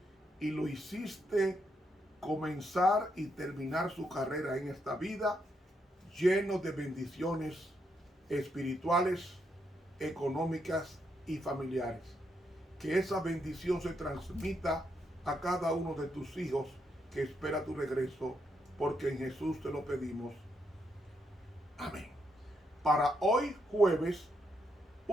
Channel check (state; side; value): normal; both; correlation 0.79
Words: y lo hiciste comenzar y terminar su carrera en esta vida lleno de bendiciones espirituales, económicas y familiares. Que esa bendición se transmita a cada uno de tus hijos que espera tu regreso, porque en Jesús te lo pedimos. Amén. Para hoy jueves,